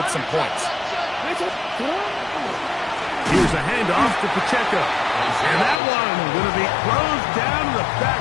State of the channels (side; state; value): right; drops out; at 5.8 s